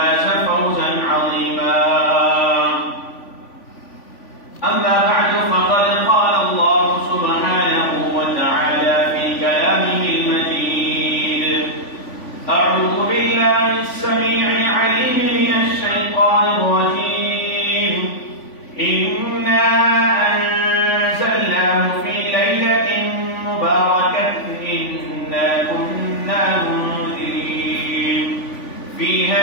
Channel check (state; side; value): late; right; 3.5 ms